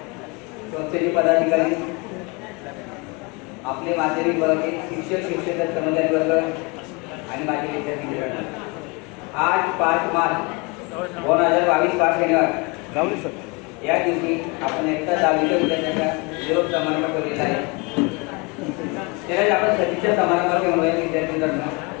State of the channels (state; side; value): quieter; right; 28.8 dB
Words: संस्थेचे पदाधिकारी, आपले माध्यमिक वर्ग, शिक्षक, शिक्षक, कर्मचारी वर्ग आणि माझे विद्यार्थी मित्रांनो, आज 5 मार्च 2022 5 शनिवार या दिवशी आपण एकटा 10वीच्या विद्यार्थ्यांचा निरोप समारंभ ठेवलेला आहे. त्यालाच आपण सतीच्या समारंभाचे म्हणूया विद्यार्थी मित्रांनो.